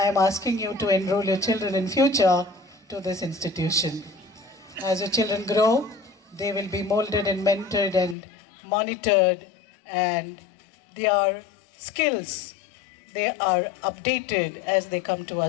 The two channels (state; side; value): drops out; right; at 8.2 s